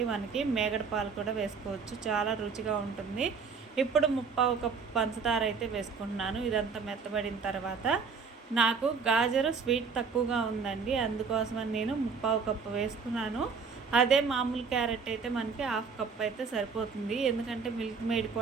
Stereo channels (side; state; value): left; quieter; 5.4 dB